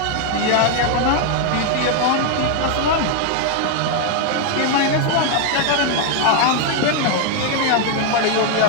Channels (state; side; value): different; both; correlation 0.01